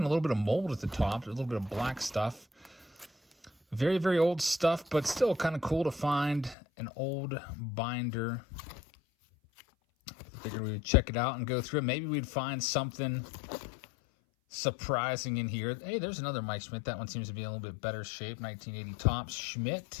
a little bit of mold at the top. A little bit of black stuff. Very, very old stuff, but still kind of cool to find an old binder. Figured we would check it out and go through it. Maybe we'd find something surprising in here. Hey, there's another Mike Schmidt. That one seems to be in a little bit better shape. 1980 tops,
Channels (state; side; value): drops out; right; at 6.6 s